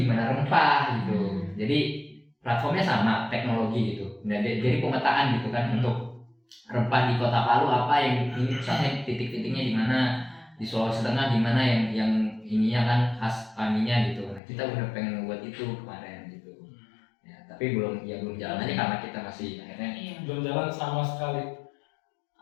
rempah gitu. Jadi platformnya sama, teknologi gitu. Nah, jadi pemetaan gitu kan untuk rempah di Kota Palu apa yang ini pusatnya titik-titiknya di mana, di Sulawesi Tengah di mana yang ininya kan khas paninya gitu. Nah kita udah pengen membuat itu kemarin gitu. Ya tapi belum jalan aja karena kita masih akhirnya Belum jalan sama sekali.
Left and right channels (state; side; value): drops out; right; at 14.4 s